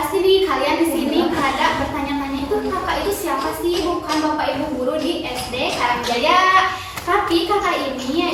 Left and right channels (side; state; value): both; identical; correlation 1.00